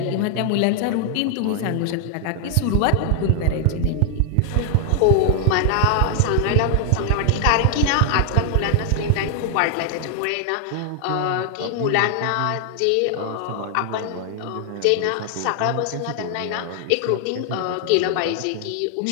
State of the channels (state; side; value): different; both; correlation 0.00